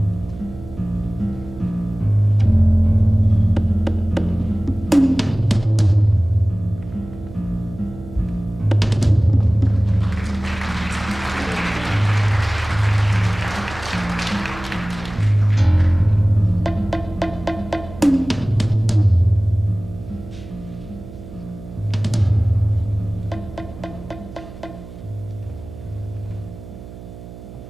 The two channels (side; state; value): right; noise; hum, 15 dB below the sound